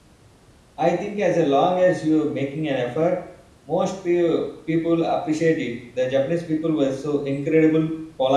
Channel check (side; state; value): both; identical; correlation 1.00